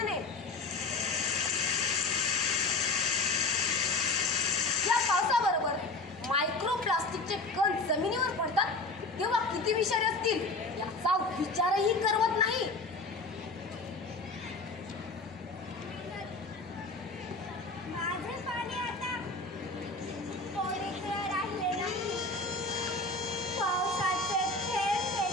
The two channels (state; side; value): quieter; right; 3.3 dB